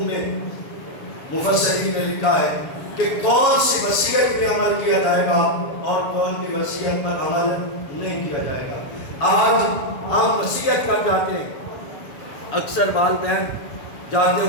میں مفسرین نے لکھا ہے کہ کون سی وصیت پہ عمل کیا جائے گا اور کون کی وصیت پر عمل نہیں کیا جائے گا۔ آج ہم وصیت کر جاتے ہیں، اکثر والدین جاتے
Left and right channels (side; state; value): right; late; 7.3 ms